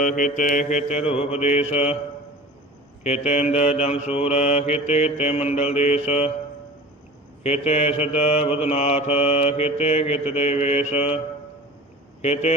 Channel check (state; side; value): normal; both; correlation 0.39